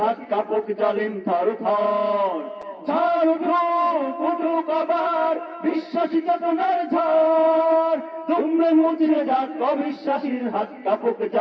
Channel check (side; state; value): both; identical; correlation 1.00